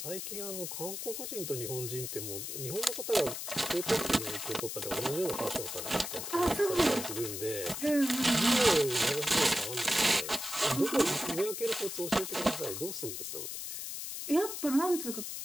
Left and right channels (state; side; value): noise; left; hiss, 6 dB below the sound